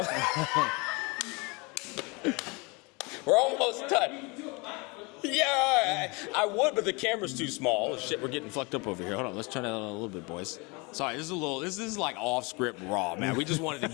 We're almost done. Yeah, I would, but the camera's too small. Oh, shit, we're getting fucked up over here. Hold on, let's turn that on a little bit, boys. Sorry, this is like off script raw, man. We just wanted to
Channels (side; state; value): right; quieter; 28.0 dB